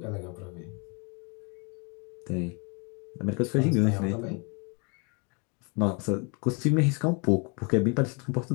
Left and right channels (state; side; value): quieter; right; 33.6 dB